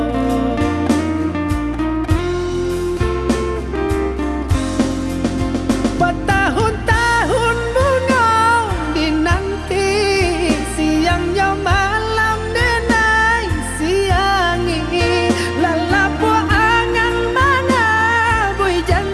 Bertahun-tahun bunga dinanti, siangnya malam denai siangi. Lalapu angan mana bui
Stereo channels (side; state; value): both; identical; correlation 1.00